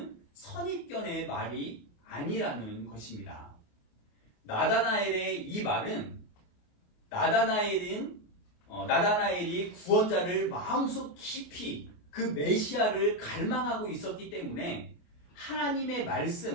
선입견의 말이 아니라는 것입니다. 나다나엘의 이 말은 나다나엘은 나다나엘이 구원자를 마음속 깊이 그 메시아를 갈망하고 있었기 때문에 하나님의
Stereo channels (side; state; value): right; late; 28 ms